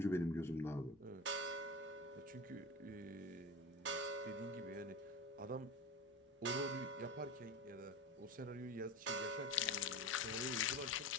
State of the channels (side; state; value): both; normal; correlation 0.28